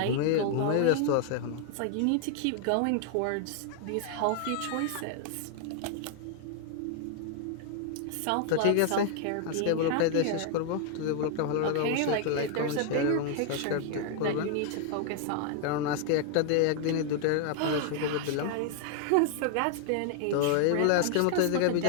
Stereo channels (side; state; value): both; different; correlation 0.00